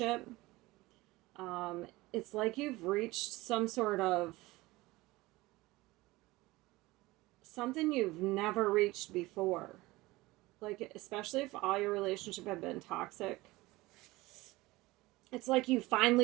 it's like you've reached some sort of something you've never reached before. Like, especially if all your relationship have been toxic, it's like you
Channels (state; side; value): quieter; left; 20.2 dB